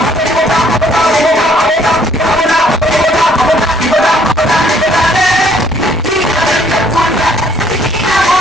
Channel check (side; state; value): both; normal; correlation 0.63